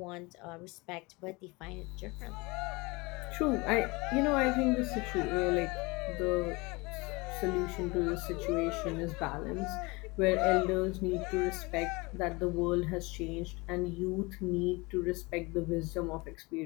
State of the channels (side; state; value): right; quieter; 25.0 dB